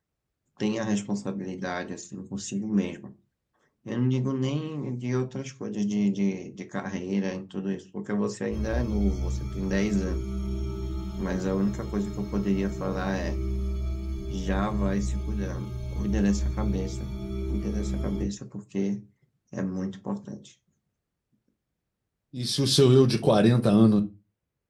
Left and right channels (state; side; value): identical; both; correlation 1.00